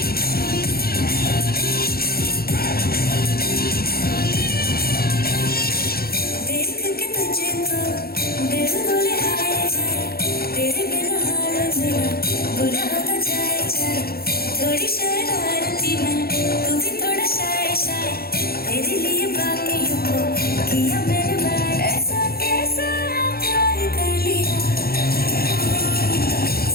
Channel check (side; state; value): right; late; 0.44 ms